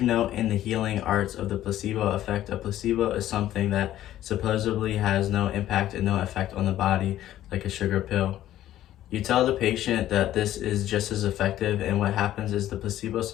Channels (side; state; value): right; quieter; 13.1 dB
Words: know in the healing arts of the placebo effect, a placebo is something that supposedly has no impact and no effect on the body, like a sugar pill. You tell the patient that this is just as effective, and what happens is the placebo